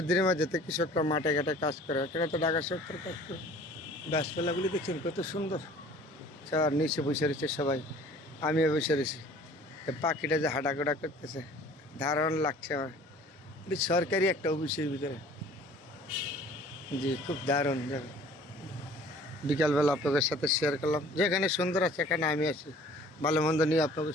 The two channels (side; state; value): both; normal; correlation 0.50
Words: মাঝে তো কৃষকরা মাঠে ঘাটে কাজ করে, এখানে তো ঢাকা শহর কাজ করে। গাছপালাগুলি দেখছেন কত সুন্দর, চার নিচে বসে রয়েছে সবাই, আমিও বসে রয়েছি। পাখিটা যে হাঁটাগোড়া করতেছে, দারুণ লাগছে আমার। এটি সরকারি একটা অফিসের ভিতরে। জি, খুব দারুণ জায়গা। বিকালবেলা আপনাদের সাথে শেয়ার করলাম, যেখানে সুন্দর আছে এখানে আমি আছি। ভালো মন্দ নিয়ে আপনাদের